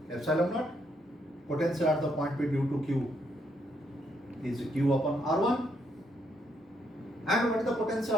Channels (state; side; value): normal; both; correlation 0.74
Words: epsilon naught. Potential at the point P due to Q is Q upon R1. And what is the potential